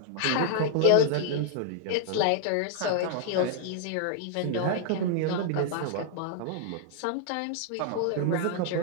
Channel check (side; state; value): both; different; correlation -0.01